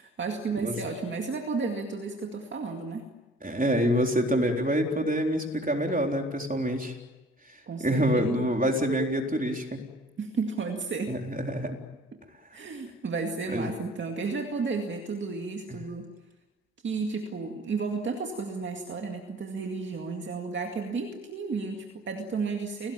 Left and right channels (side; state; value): both; normal; correlation 0.52